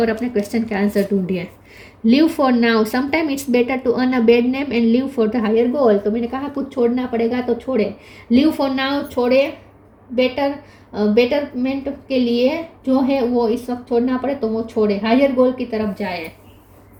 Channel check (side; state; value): both; identical; correlation 1.00